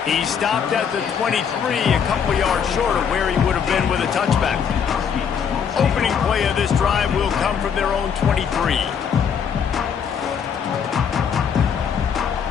He stopped at the 23, a couple yards short of where he would have been with a touchback. Opening play of this drive will come from their own 23.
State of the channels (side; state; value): right; quieter; 7.3 dB